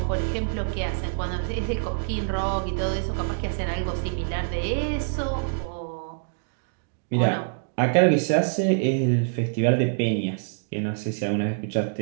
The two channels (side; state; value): left; silent; digital silence